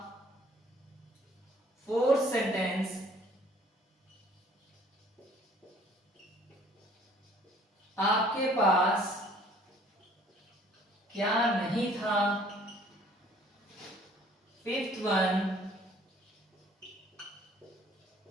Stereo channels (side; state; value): both; normal; correlation 0.56